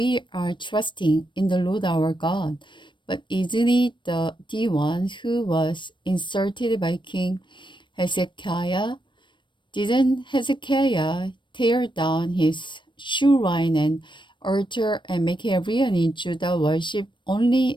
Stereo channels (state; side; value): late; right; 0.23 ms